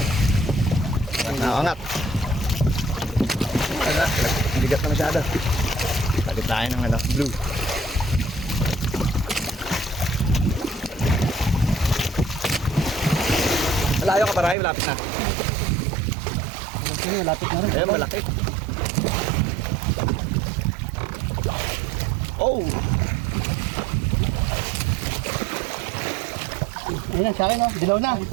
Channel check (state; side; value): drops out; left; at 14.6 s